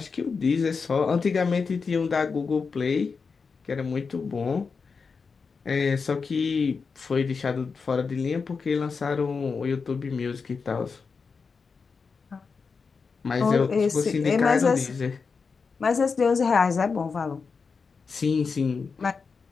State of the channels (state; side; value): quieter; right; 5.1 dB